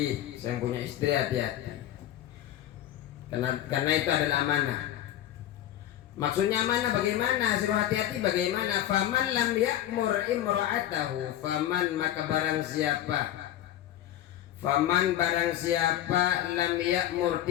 saya punya istri, hati-hati. Karena itu adalah amanah. Maksudnya amanah bagaimana? Suruh hati-hati bagaimana? Faman lam ya'mur imra'atahu, faman maka barang siapa, faman barang siapa lam ya'mur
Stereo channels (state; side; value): quieter; right; 12.3 dB